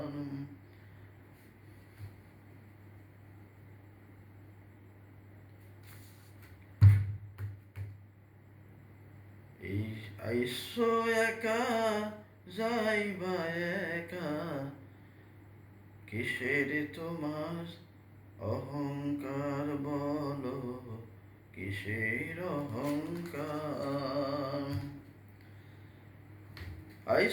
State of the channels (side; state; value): both; identical; correlation 1.00